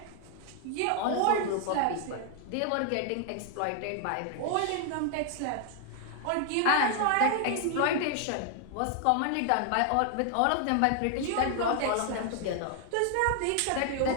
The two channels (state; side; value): different; both; correlation 0.00